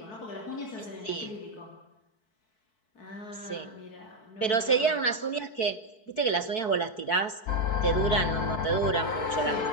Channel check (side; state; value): right; late; 4.6 ms